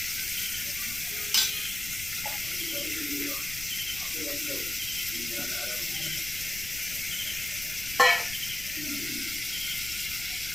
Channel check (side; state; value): left; noise; rumble, 13 dB below the sound